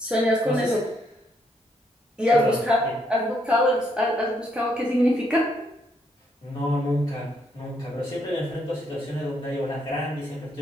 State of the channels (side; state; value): both; normal; correlation 0.74